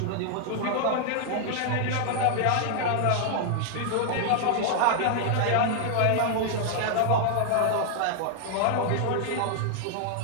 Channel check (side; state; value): both; different; correlation 0.00